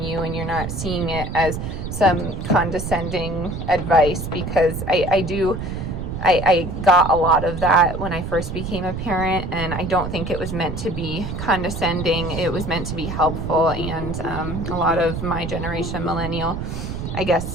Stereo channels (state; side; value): noise; right; rumble, 5 dB below the sound